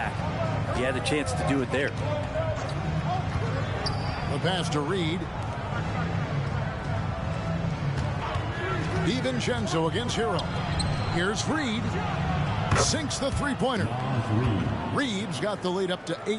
He had a chance to do it there. The pass to Reed. DiVincenzo against Hero. Here's Reed. Sinks the three-pointer. Reed's got the lead up to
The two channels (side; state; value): both; identical; correlation 1.00